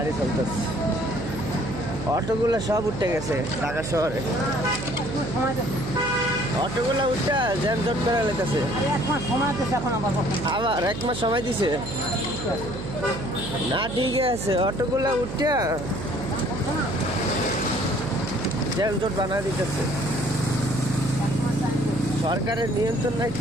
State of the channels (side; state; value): right; noise; hum, 7 dB below the sound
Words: চলতেছে, অটোগুলো সব উঠে গেছে ঢাকা শহরে। অটোগুলো উঠে জ্যামজট করে লেগেছে। আবার 1 মাস সময় দিছে না, ঠিক আছে, অটোগুলো উঠে জ্যামজট বানা দিতেছে। সরকারের নিয়ন্ত্রণ নাই